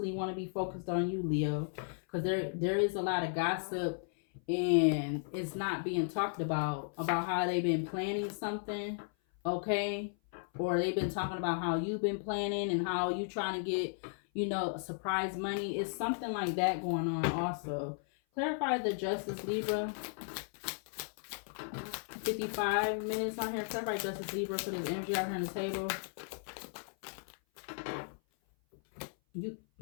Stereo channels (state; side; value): silent; right; 54 dB below the other